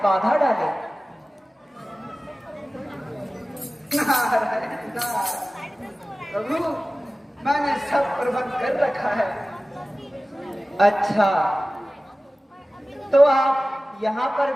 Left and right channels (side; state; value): both; normal; correlation 0.97